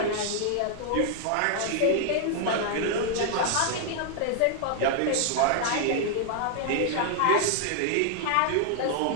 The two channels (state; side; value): different; both; correlation 0.00